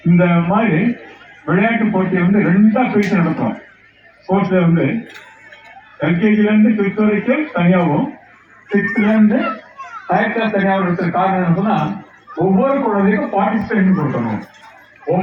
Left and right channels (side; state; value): both; identical; correlation 1.00